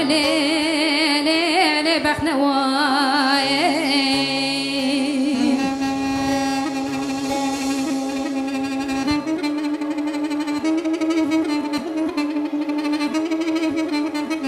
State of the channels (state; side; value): identical; both; correlation 1.00